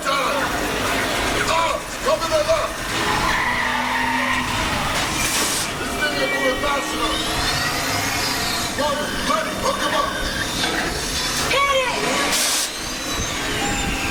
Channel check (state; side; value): identical; both; correlation 1.00